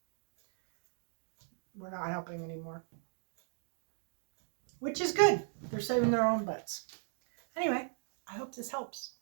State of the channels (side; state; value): left; silent; 53 dB below the other